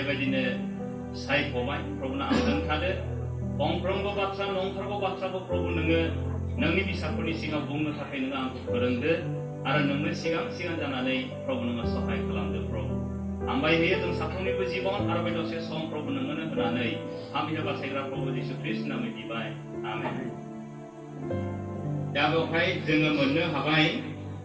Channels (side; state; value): both; identical; correlation 1.00